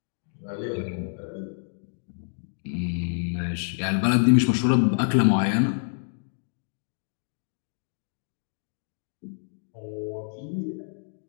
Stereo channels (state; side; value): silent; right; digital silence